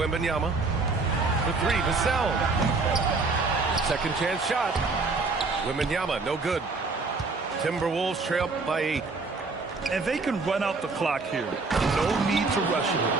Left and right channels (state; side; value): quieter; left; 3.9 dB